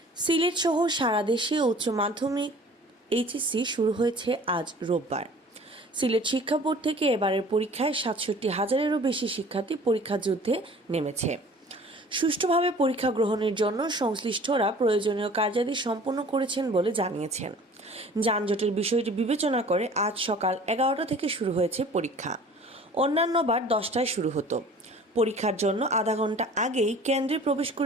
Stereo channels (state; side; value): normal; both; correlation 0.47